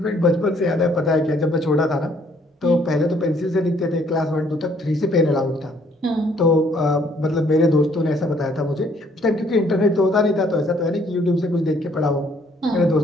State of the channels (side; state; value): both; normal; correlation 0.64